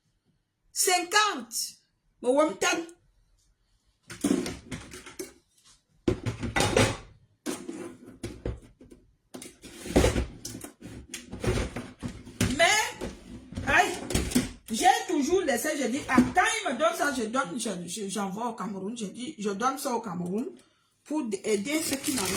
50. Mais, j'ai toujours laissé, je dis, quand il me donne ça, j'envoie au Cameroun, je dis, je donne ça au Cameroun pour aider ceux qui n'en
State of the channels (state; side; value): identical; both; correlation 1.00